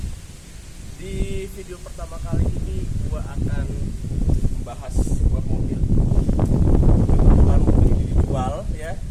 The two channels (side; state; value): both; identical; correlation 1.00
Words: Di video pertama kali ini gua akan membahas sebuah mobil. Kebetulan mobil ini dijual ya.